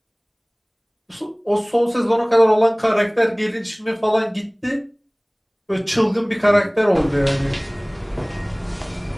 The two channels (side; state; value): both; identical; correlation 1.00